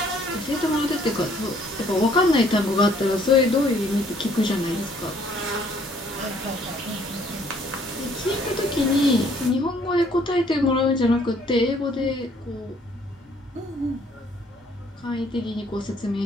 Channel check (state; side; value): normal; both; correlation 0.62